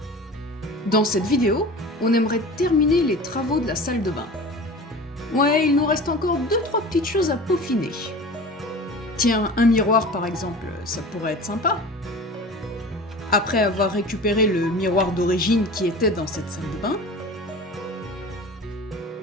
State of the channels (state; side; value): normal; both; correlation 0.37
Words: Dans cette vidéo, on aimerait terminer les travaux de la salle de bain. Ouais, il nous reste encore 2-3 petites choses à peaufiner. Tiens, un miroir par exemple, ça pourrait être sympa. Après avoir récupéré le miroir d'origine qui était dans cette salle de bain,